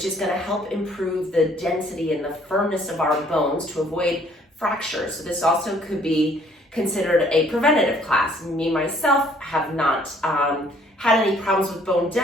is going to help improve the density and the firmness of our bones to avoid fractures. So this also could be considered a preventative class. Me, myself, have not had any problems with bone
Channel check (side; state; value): both; normal; correlation 0.61